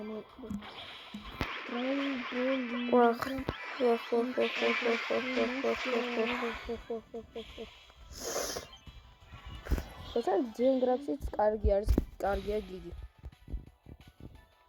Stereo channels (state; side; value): identical; both; correlation 1.00